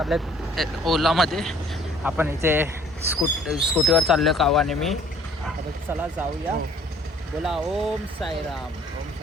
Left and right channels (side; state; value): both; normal; correlation 0.55